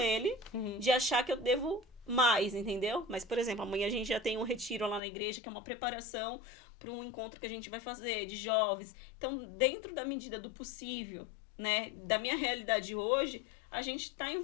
Uhum. de achar que eu devo mais, entendeu? Mas, por exemplo, amanhã a gente já tem um retiro lá na igreja, que é uma preparação para um encontro que a gente vai fazer de jovens. Então, dentro da medida do possível, né, da minha realidade hoje, a gente tá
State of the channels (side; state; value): right; drops out; at 5.0 s